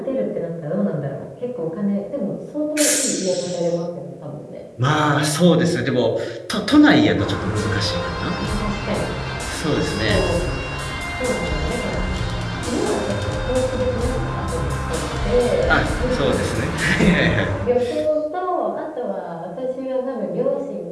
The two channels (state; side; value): identical; both; correlation 1.00